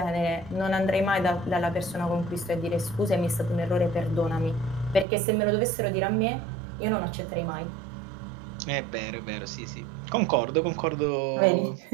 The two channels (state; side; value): drops out; left; at 5.1 s